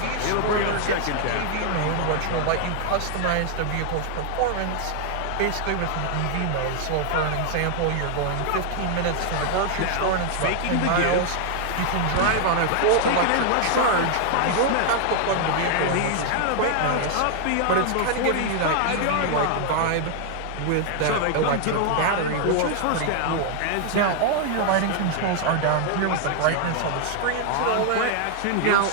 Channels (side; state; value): both; different; correlation 0.00